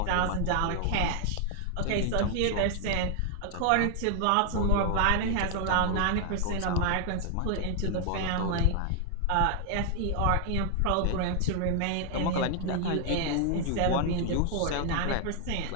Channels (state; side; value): different; both; correlation 0.00